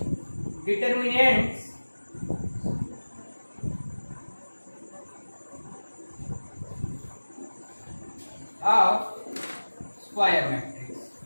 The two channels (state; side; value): inverted; both; correlation -1.00